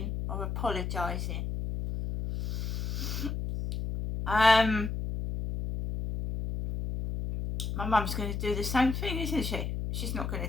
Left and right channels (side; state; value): left; noise; hum, 3 dB below the sound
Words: or apologising. My mum's going to do the same thing, isn't she? She's not going